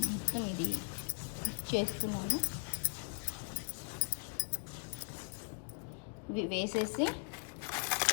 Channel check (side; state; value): right; quieter; 38.9 dB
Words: మొత్తం ఇది చేస్తున్నాను. వేసేసి